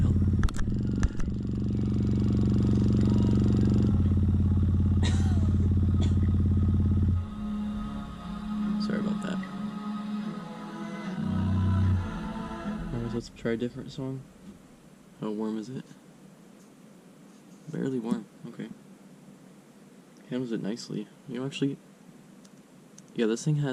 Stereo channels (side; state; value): both; identical; correlation 1.00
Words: Sorry about that. Alright, let's try a different song. How warm is it? Barely warm, okay. Handles it nicely. You know, actually, yeah, this thing